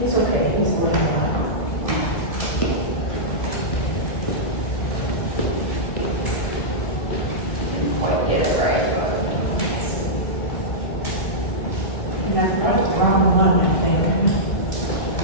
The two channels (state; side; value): late; right; 2.2 ms